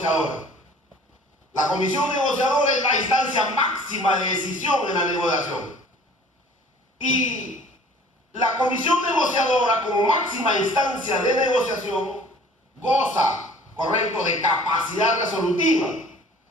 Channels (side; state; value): both; normal; correlation 0.50